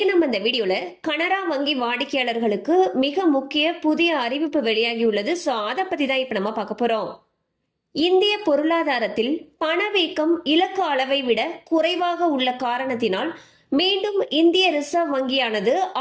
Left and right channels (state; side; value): identical; both; correlation 1.00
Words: நம்ம இந்த வீடியோல கனரா வங்கி வாடிக்கையாளர்களுக்கு மிக முக்கிய புதிய அறிவிப்பு வெளியாகி உள்ளது. அதை பத்தி தான் இப்ப நம்ம பார்க்க போறோம். இந்திய பொருளாதாரத்தில் பணவீக்கம் இலக்கு அளவை விட குறைவாக உள்ள காரணத்தினால் மீண்டும் இந்திய ரிசர்வ் வங்கியானது